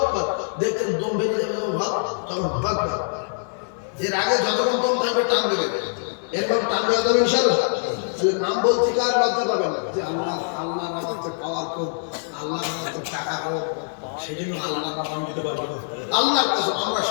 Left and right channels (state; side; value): silent; right; 58 dB below the other